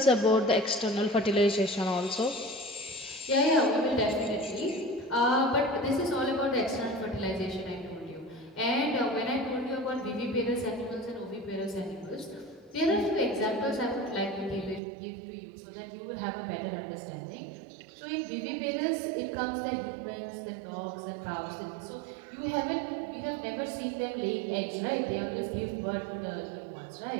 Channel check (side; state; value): left; drops out; at 14.8 s